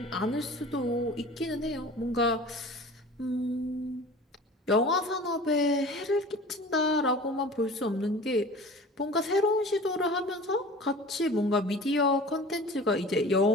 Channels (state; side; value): normal; both; correlation 0.41